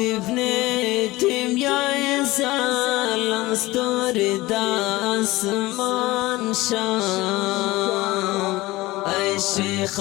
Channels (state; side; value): quieter; right; 19.6 dB